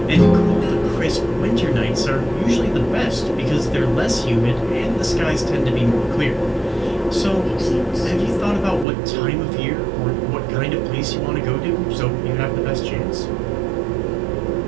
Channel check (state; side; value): drops out; left; at 8.8 s